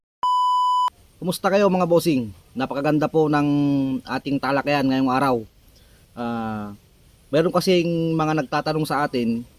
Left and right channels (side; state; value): both; identical; correlation 1.00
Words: Kumusta kayo mga bossing? Napakaganda po ng ating talakayan ngayong araw. Meron kasing mga nagtatanong sa atin